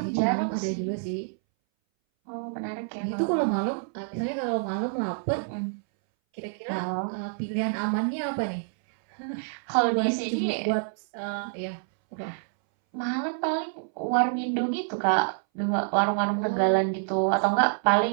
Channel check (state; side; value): silent; left; 60 dB below the other